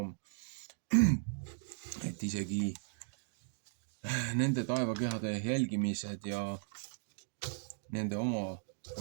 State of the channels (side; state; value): left; silent; digital silence